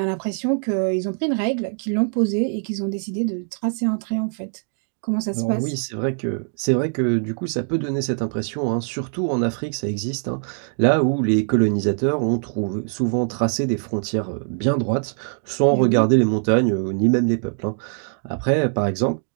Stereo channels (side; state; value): left; silent; 56 dB below the other